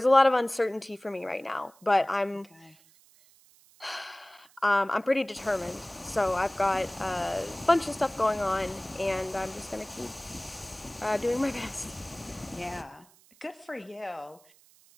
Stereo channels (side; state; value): right; noise; hiss, 28 dB below the sound